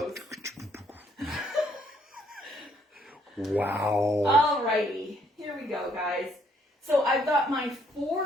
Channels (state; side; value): normal; both; correlation 0.68